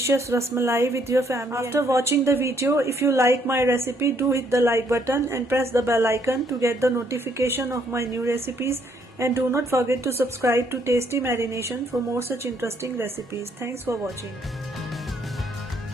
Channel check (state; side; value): normal; both; correlation 0.69